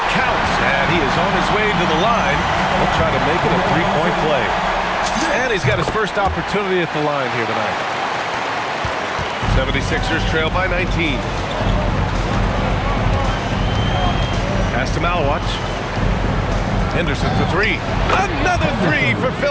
counts. And he is on his way to the line. He'll try to make it a 3-point play. And he's got his first opportunity at the line here tonight. 76ers trail by 19. Pass to Malwatch. Henderson for 3. Another 3 for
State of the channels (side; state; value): both; identical; correlation 1.00